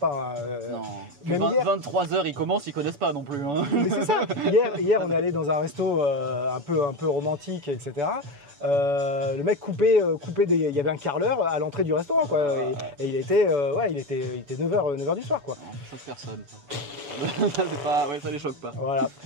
Non. Même 23 h ils commencent, ils connaissent pas non plus. Hein. Mais c'est ça. Hier on est allé dans un resto un peu romantique, etc. Le mec coupait il y avait un carreleur à l'entrée du restaurant quoi, et il était 9h du soir quoi. Non, ça choque personne. C'est pas, ouais, ça les choque pas. Voilà.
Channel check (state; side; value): late; left; 7.0 ms